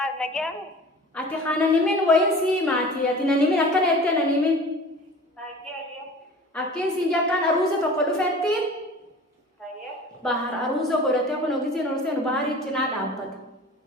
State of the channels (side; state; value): both; normal; correlation 0.42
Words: nagaan? Ati haa nanimin wayin sii himaati. Ati nanimin akkana jettee nanimin. Akkin siin jakkaan aruusa tokko dhufetti. Bahar aruusa godhatee kun ogisiin horseenu baharii cinaa dhaabbata.